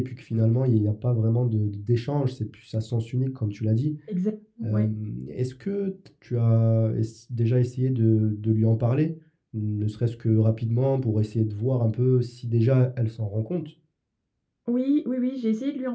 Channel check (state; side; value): identical; both; correlation 1.00